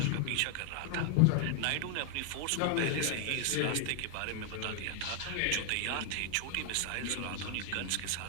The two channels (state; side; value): different; both; correlation 0.00